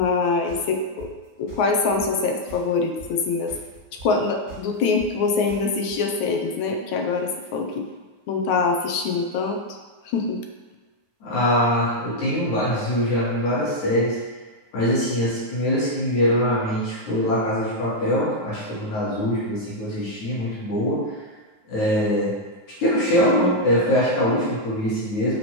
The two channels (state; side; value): late; right; 9.5 ms